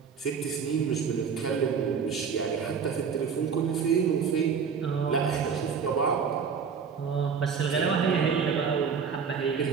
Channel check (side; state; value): left; quieter; 6.3 dB